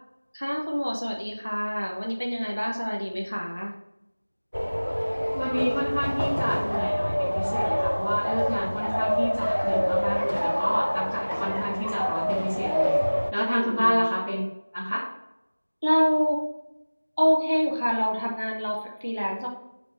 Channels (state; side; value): inverted; both; correlation -1.00